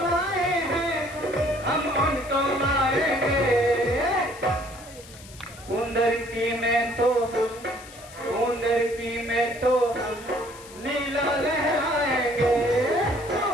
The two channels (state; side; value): noise; left; hiss, 19 dB below the sound